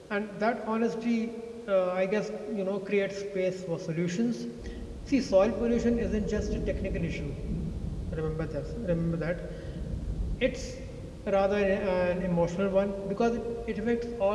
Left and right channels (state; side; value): identical; both; correlation 1.00